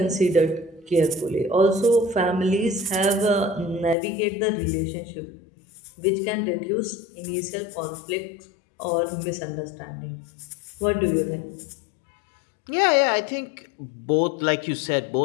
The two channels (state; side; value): drops out; right; at 4.0 s